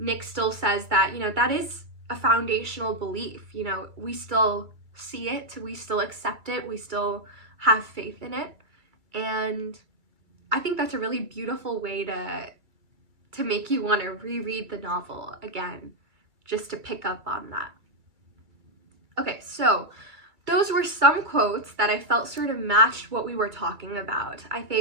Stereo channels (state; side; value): late; left; 2.2 ms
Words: still says that, you know, that is a foundational belief. You know, we still see it, we still accept it, we still have faith in it. And I think that's a really beautiful way to make you want to reread the novel again, just to pick up on that. Okay, so those were some quotes that I felt sort of matched what we were talking about. I